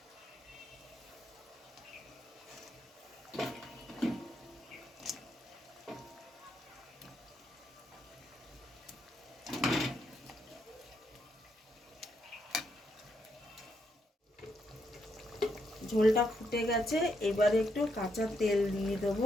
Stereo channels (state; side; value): normal; both; correlation 0.78